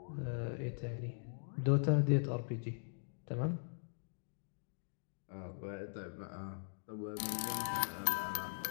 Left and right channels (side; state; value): right; silent; digital silence